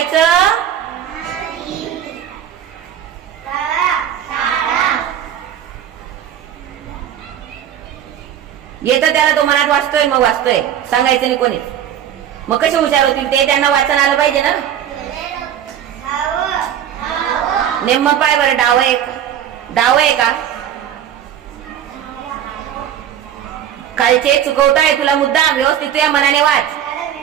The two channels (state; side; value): quieter; left; 10.1 dB